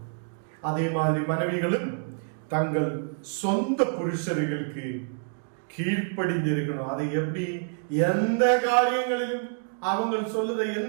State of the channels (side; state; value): left; silent; 60 dB below the other